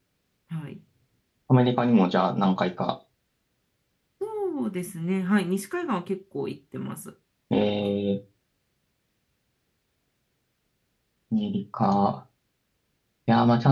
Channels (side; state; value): both; identical; correlation 1.00